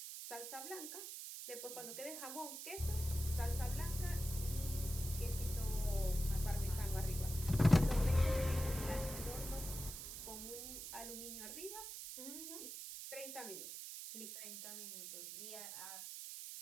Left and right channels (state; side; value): noise; right; hiss, 8 dB below the sound